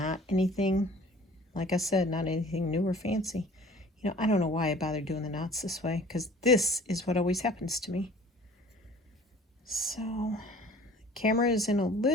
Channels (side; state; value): both; normal; correlation 0.49